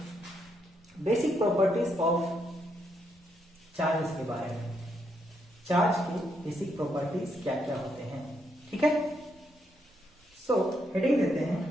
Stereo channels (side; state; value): both; normal; correlation 0.77